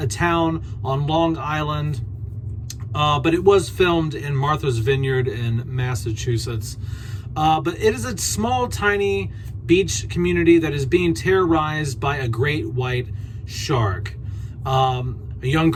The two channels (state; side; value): identical; both; correlation 1.00